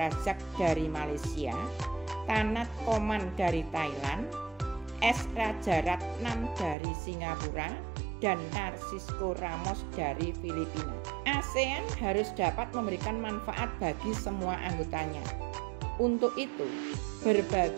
dari Malaysia, Tanat Koman dari Thailand, S. Rajaratnam dari Singapura, dan Narcisco Ramos dari Filipina. ASEAN harus dapat memberikan manfaat bagi semua anggotanya. Untuk itu,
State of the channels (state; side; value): drops out; left; at 6.8 s